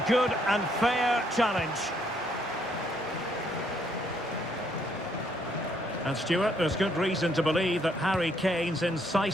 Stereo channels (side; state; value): both; normal; correlation 0.70